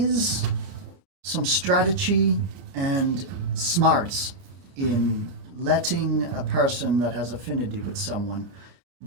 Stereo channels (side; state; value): left; late; 31 ms